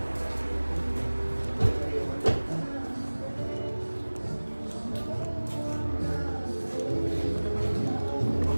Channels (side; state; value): both; inverted; correlation -1.00